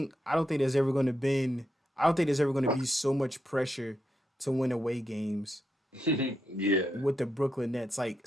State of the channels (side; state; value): both; normal; correlation 0.83